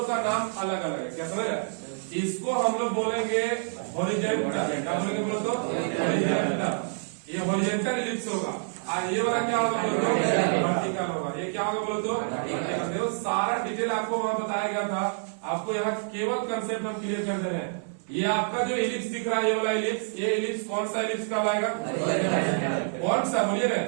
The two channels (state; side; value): silent; left; 59 dB below the other